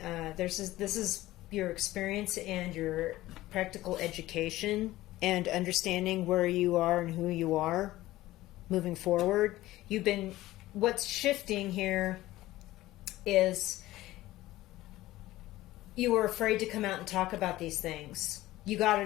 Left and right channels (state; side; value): quieter; right; 16.5 dB